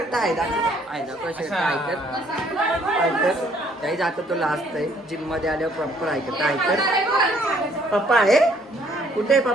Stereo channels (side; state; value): both; normal; correlation 0.63